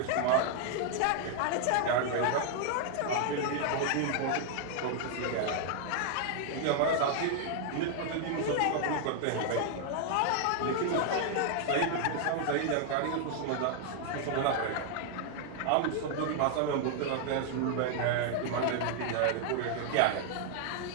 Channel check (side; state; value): both; different; correlation 0.00